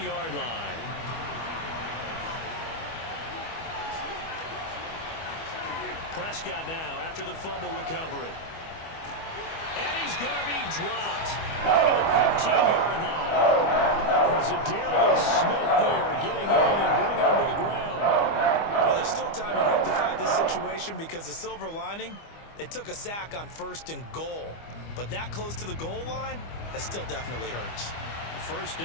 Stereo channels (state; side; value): late; right; 25 ms